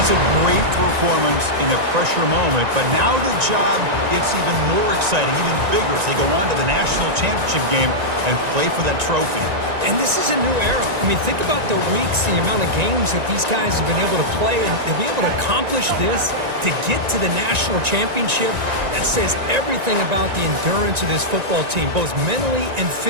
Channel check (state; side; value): late; left; 1.9 ms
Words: That's a great performance in a pressure moment, but now the job gets even more exciting, even bigger as they go on to the national championship game and play for that trophy. And this is a new era. I mean, think about the weeks, the amount of games that these guys have been able to play, and to be able to accomplish this, to get to the national championship, that says everything about the endurance of this football team, both mentally and